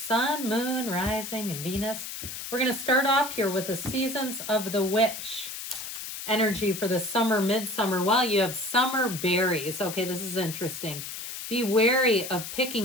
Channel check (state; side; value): noise; left; hiss, 8 dB below the sound